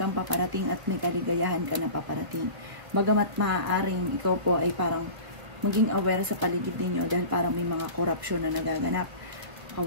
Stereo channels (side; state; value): left; late; 1.7 ms